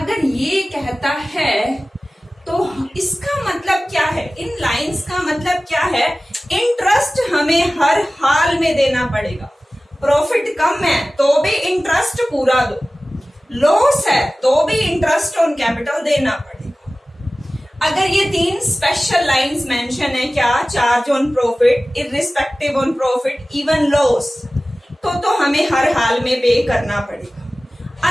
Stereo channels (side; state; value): both; normal; correlation 0.97